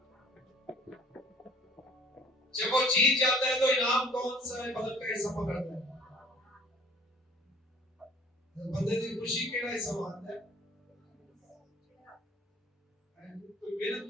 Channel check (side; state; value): both; normal; correlation 0.53